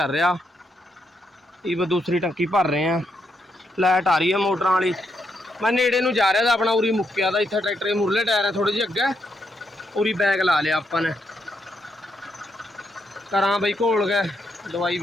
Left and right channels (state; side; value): normal; both; correlation 0.79